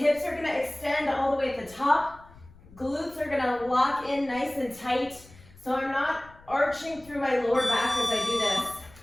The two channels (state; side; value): noise; left; rumble, 23 dB below the sound